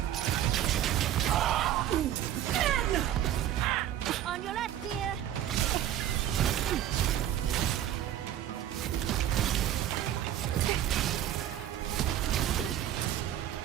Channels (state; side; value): quieter; left; 11.6 dB